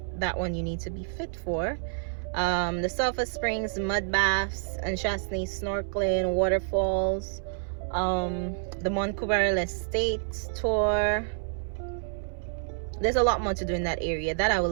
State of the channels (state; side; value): silent; left; 59 dB below the other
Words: That one you need to be fit for. The Sulphur Springs, mud baths, and Chasney snorkeling, waterfalls. The Mont Coubarel Estate tour. There's a lot more to do in that area that I will